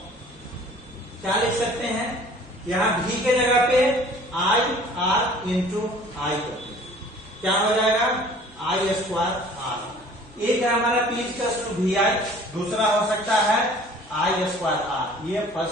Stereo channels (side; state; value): both; normal; correlation 0.50